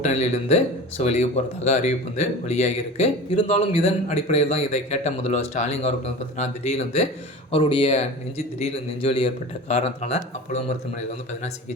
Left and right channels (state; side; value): normal; both; correlation 0.34